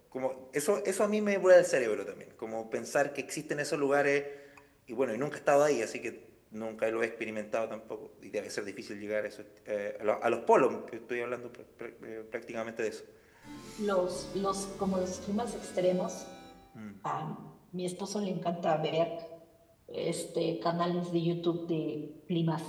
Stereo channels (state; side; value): identical; both; correlation 1.00